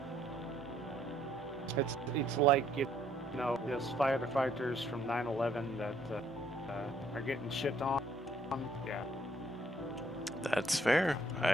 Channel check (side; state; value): both; normal; correlation 0.65